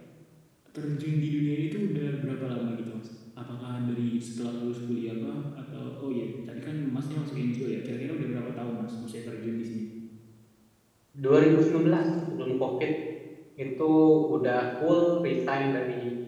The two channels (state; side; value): identical; both; correlation 1.00